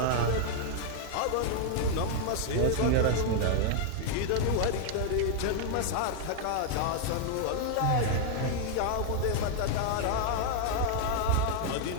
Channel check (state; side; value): different; both; correlation 0.00